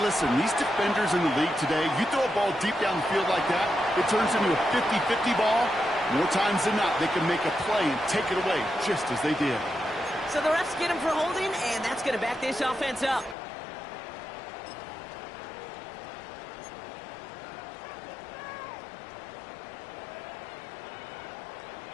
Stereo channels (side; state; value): right; drops out; at 13.4 s